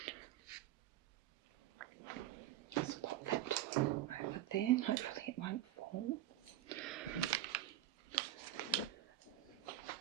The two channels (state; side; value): quieter; left; 13.9 dB